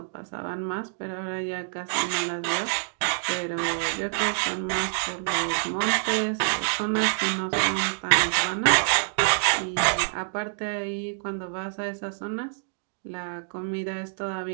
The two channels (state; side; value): silent; left; digital silence